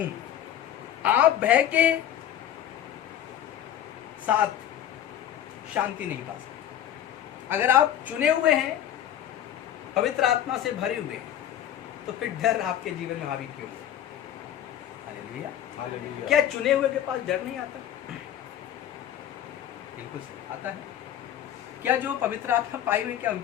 आप भय के साथ शांति नहीं पा सकते। अगर आप चुने हुए हैं, पवित्र आत्मा से भरे हुए हैं, तो फिर डर आपके जीवन में हावी क्यों? हालेलुया। हालेलुया। क्या चुने हुए के पास डर नहीं आता? बिल्कुल सही, आता है। क्या जो पवित्र आत्मा पाए हुए, क्या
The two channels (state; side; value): quieter; right; 10.6 dB